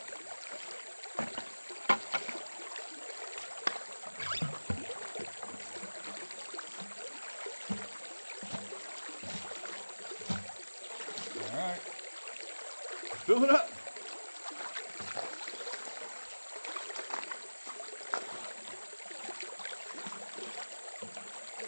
All right, fill it up.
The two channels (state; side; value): inverted; both; correlation -1.00